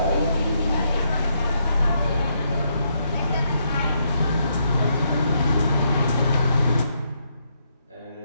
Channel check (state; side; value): inverted; both; correlation -0.77